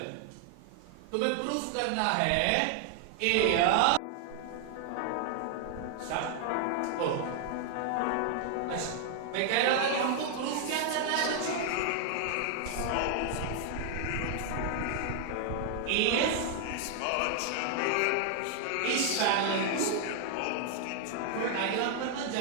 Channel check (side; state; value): both; different; correlation 0.00